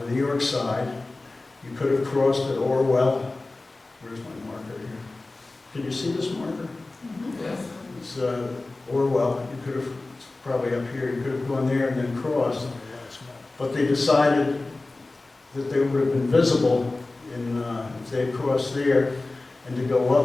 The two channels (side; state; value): right; quieter; 3.2 dB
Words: New York side. You could have crossed at Orwell. Where's my marker here? Can you see this marker? Yes. It's Orwell. You could have, it's probably up here, you could have gone there and then crossed. But they decided that they would have been visible if they had crossed there, and to go